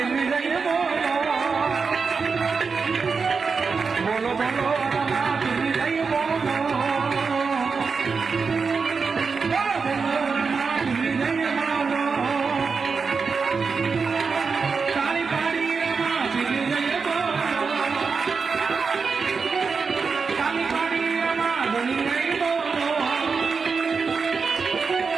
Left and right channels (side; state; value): left; quieter; 5.1 dB